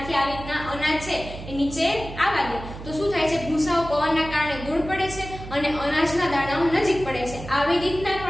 આવી રીતના અનાજ છે એ નીચે આવવા દે તો શું થાય છે, ભૂસાઓ પવનના કારણે દૂર પડે છે અને અનાજના દાણાઓ નજીક પડે છે. આવી રીતના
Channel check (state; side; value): noise; right; hum, 12 dB below the sound